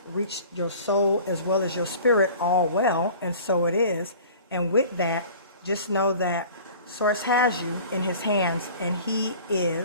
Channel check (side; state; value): both; inverted; correlation -0.44